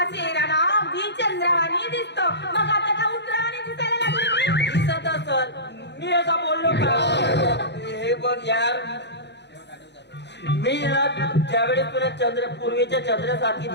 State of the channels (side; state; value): right; late; 0.50 ms